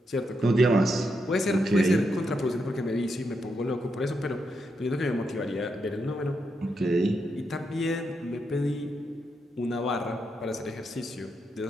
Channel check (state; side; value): normal; both; correlation 0.82